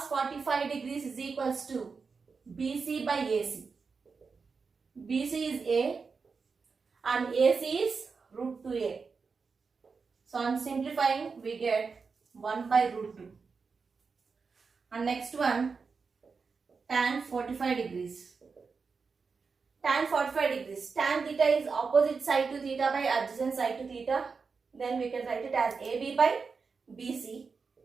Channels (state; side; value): quieter; left; 5.0 dB